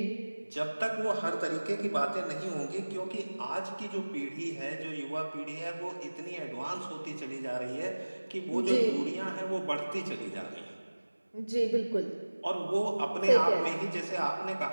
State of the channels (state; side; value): inverted; both; correlation -1.00